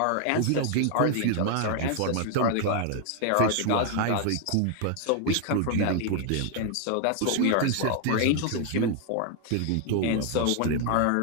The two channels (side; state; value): both; different; correlation 0.00